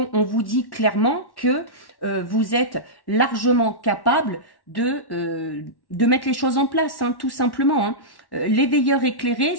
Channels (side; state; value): right; late; 1.1 ms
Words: vous dit clairement que vous êtes largement capable de mettre les choses en place, hein, tout simplement. Hein. L'éveilleur éclairé,